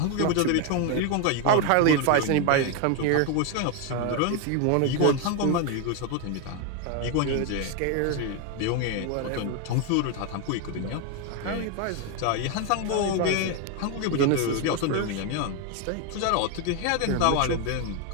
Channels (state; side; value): different; both; correlation 0.01